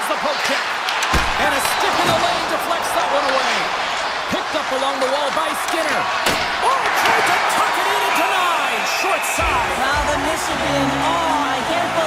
the poke check. And a stick in the lane deflects that one away. Picked up along the wall by Skinner. Oh, tried to tuck it in and denied. Short side. Well, the Michigan, I can't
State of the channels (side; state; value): both; identical; correlation 1.00